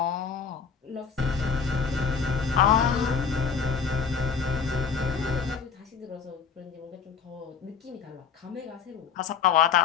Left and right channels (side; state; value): right; quieter; 6.2 dB